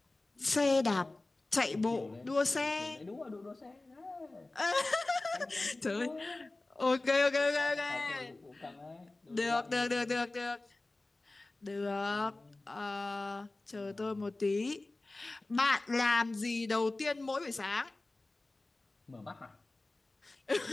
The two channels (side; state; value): right; quieter; 3.0 dB